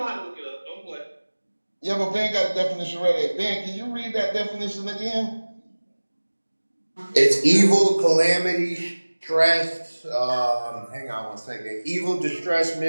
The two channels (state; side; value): inverted; both; correlation -1.00